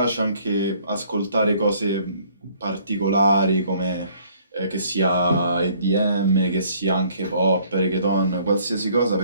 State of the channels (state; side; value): inverted; both; correlation -0.60